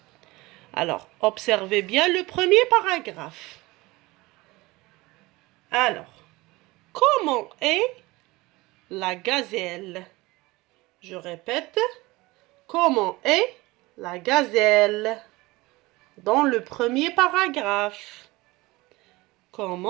Alors, observez bien le premier paragraphe. Alors, comment est la gazelle? Je répète, comment est la gazelle? Dans le premier paragraphe.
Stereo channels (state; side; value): quieter; left; 21.3 dB